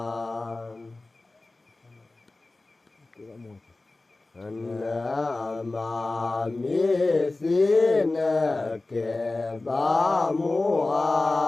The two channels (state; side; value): quieter; right; 3.1 dB